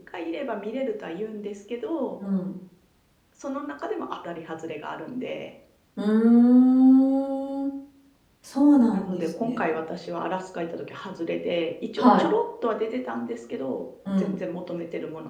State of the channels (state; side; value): identical; both; correlation 1.00